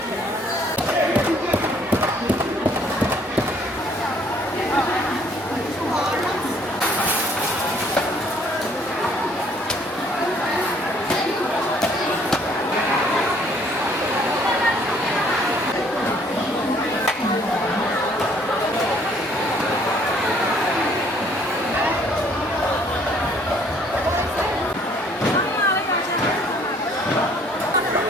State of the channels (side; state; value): both; normal; correlation 0.61